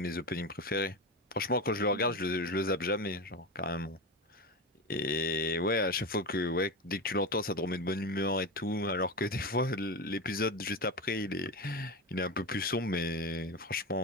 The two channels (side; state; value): both; normal; correlation 0.20